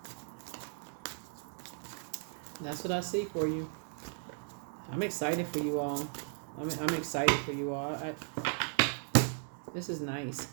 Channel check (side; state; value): left; silent; 54 dB below the other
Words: that's what I see for you. I'm excited for you all. I'm excited for you all. This is nice.